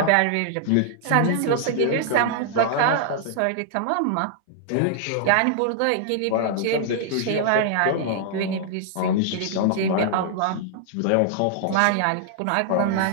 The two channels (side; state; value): both; different; correlation -0.01